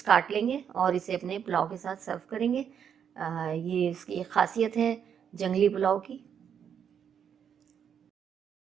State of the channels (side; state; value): left; quieter; 8.0 dB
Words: काट लेंगे और इसे अपने पुलाव के साथ सर्व करेंगे। ये इसकी एक खासियत है जंगली पुलाव की।